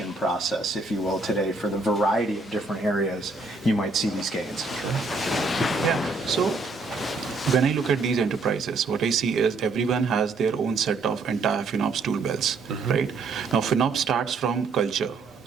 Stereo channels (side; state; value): left; quieter; 3.8 dB